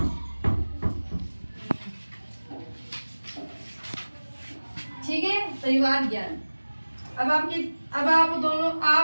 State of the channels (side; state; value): both; inverted; correlation -1.00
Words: ठीक है, परिवार ज्ञान। अब आप दोनों,